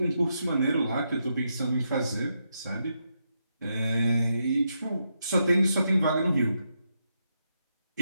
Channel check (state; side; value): inverted; both; correlation -0.82